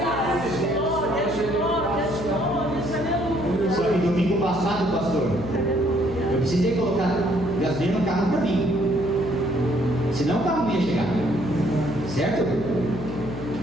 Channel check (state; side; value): noise; left; hum, 9 dB below the sound